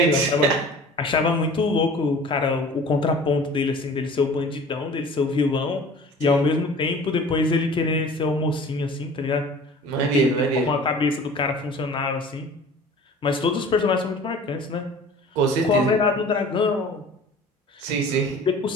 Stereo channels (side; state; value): both; normal; correlation 0.44